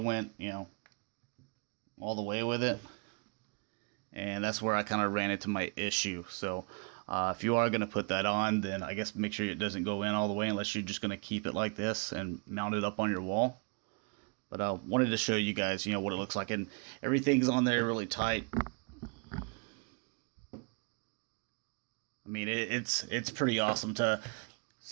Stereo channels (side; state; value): left; quieter; 35.3 dB